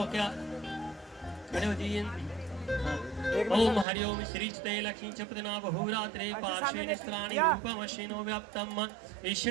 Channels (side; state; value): left; drops out; at 3.9 s